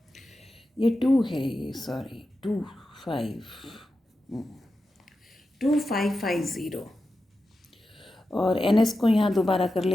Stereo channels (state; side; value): normal; both; correlation 0.91